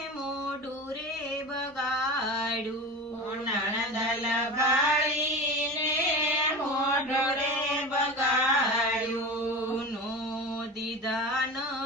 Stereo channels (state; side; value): normal; both; correlation 0.29